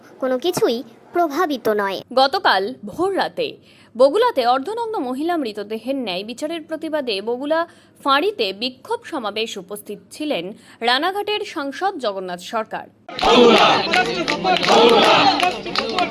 কোনো কিছুই প্রভাবিত নয়। গতকাল ভোর রাতে বগুলাতে অর্ধনগ্ন মহিলা মৃতদেহের ন্যায় বিচারের প্রতিবাদে বগুলা ফাঁড়িতে বিক্ষোভ সমাবেশ উপস্থিত ছিলেন রানাঘাটের সাংসদ জগন্নাথ সরকার।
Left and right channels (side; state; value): both; identical; correlation 1.00